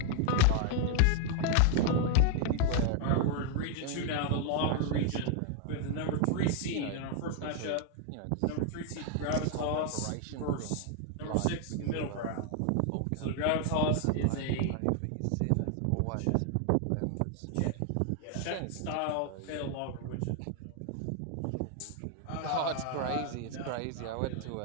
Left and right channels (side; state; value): both; different; correlation 0.00